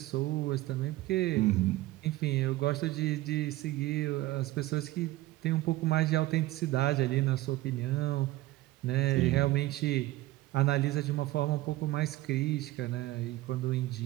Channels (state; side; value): quieter; left; 17.4 dB